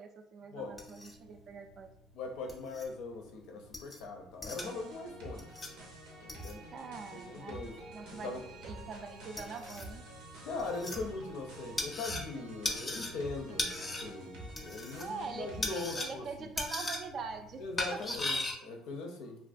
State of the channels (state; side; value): normal; both; correlation 0.66